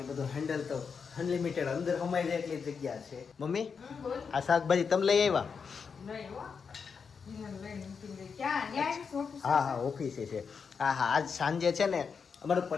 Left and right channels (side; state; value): right; quieter; 5.9 dB